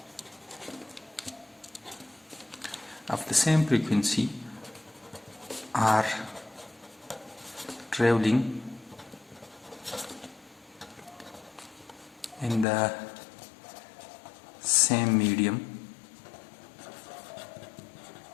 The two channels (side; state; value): right; drops out; at 12.7 s